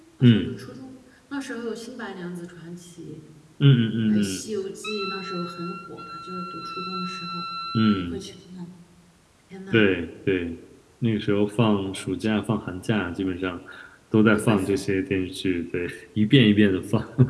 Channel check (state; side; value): identical; both; correlation 1.00